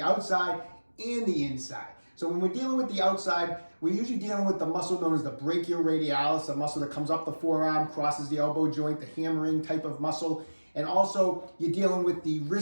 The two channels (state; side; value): inverted; both; correlation -1.00